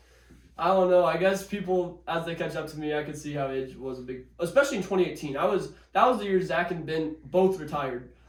don't know. I guess people, as they catch up to me, I could see how age was a big, especially in 2018. That was the year Zach and Ben both retired.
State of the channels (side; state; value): both; identical; correlation 1.00